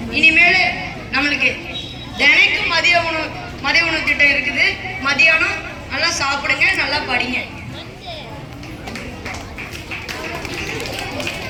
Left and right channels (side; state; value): both; identical; correlation 1.00